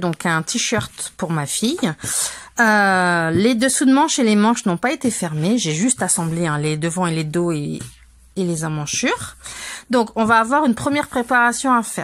un t-shirt pour ma fille. Les dessous de manches et les manches n'ont pas été fermés. J'ai juste assemblé les devants et les dos et les emmanchures. Donc on va avoir une première préparation à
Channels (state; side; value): identical; both; correlation 1.00